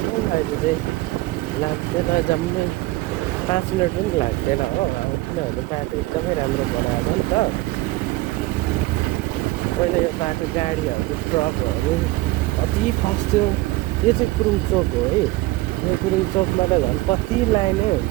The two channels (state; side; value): quieter; left; 19.4 dB